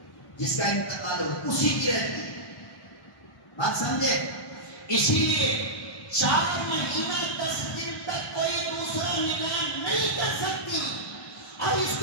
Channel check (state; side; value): late; right; 1.1 ms